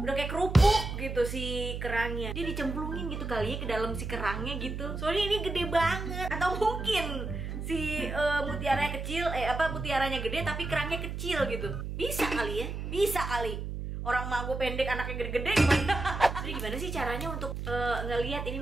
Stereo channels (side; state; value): right; noise; hum, 5 dB below the sound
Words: kayak kerupuk gitu si kerangnya. Dia dicemplungin gitu kali ya ke dalam si kerangnya gitu. Soalnya ini gede banget. Atau mungkin si mutiaranya kecil, mutiaranya gede tapi kerangnya kecil gitu. Bisa kali ya? Bisa kali. Orang mah gue pendek, anaknya gede-gede gimana? Jadi gimana sih caranya untuk ngelihat ini